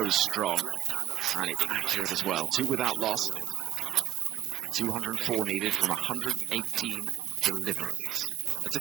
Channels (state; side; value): quieter; left; 12.6 dB